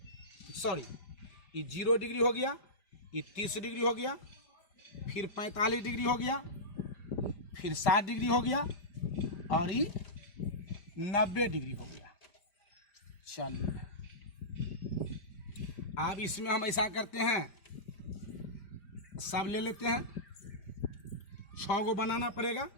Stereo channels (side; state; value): right; late; 5.0 ms